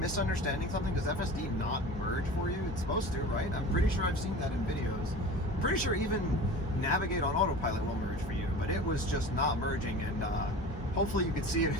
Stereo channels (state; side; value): normal; both; correlation 0.36